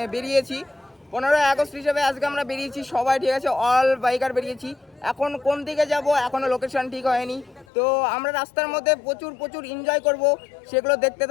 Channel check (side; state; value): right; drops out; at 7.7 s